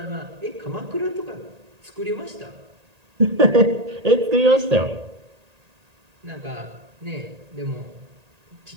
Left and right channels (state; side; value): late; left; 1.8 ms